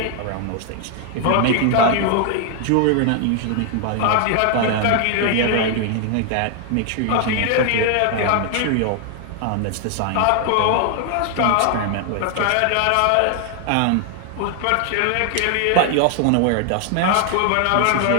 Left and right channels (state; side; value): different; both; correlation 0.00